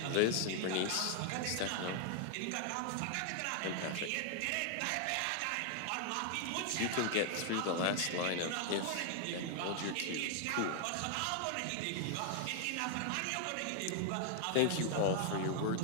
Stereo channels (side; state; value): both; different; correlation 0.00